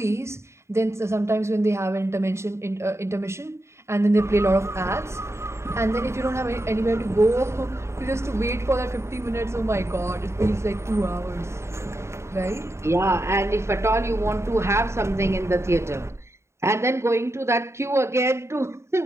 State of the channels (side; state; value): left; late; 0.13 ms